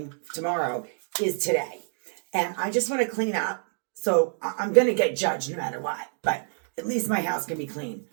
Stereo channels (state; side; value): silent; left; digital silence